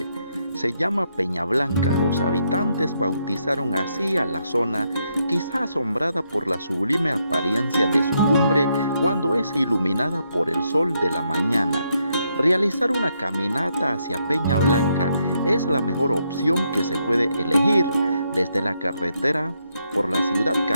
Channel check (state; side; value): inverted; both; correlation -0.78